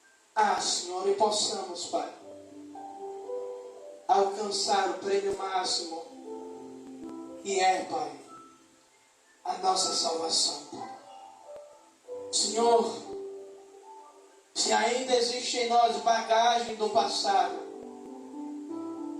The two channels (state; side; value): identical; both; correlation 1.00